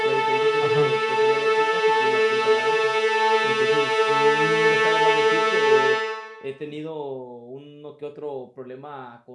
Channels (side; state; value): both; identical; correlation 1.00